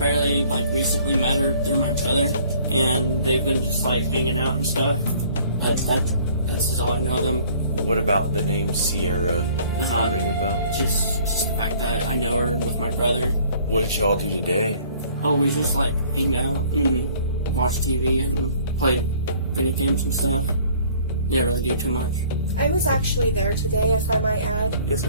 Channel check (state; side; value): inverted; both; correlation -0.55